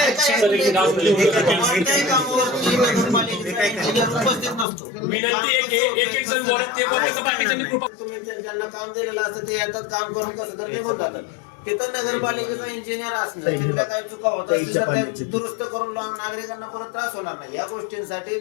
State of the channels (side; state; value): right; drops out; at 4.7 s